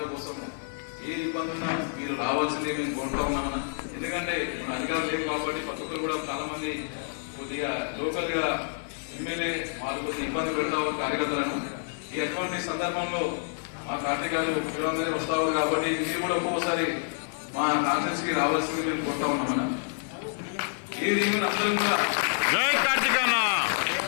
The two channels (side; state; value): right; silent; 59 dB below the other